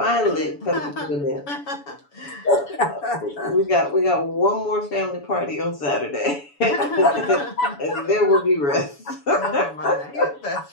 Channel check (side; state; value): right; late; 7.0 ms